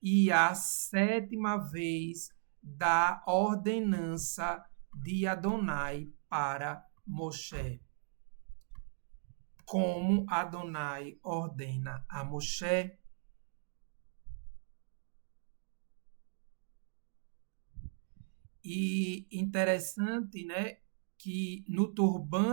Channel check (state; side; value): silent; left; digital silence